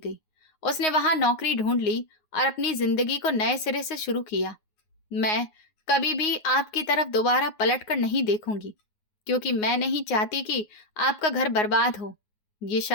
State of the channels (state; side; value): late; right; 9.5 ms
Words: उसने वहां नौकरी ढूंढ ली और अपनी जिंदगी को नए सिरे से शुरू किया। मैं कभी भी आपकी तरफ दोबारा पलट कर नहीं देखूंगी, क्योंकि मैं नहीं चाहती कि आपका घर बर्बाद हो। ये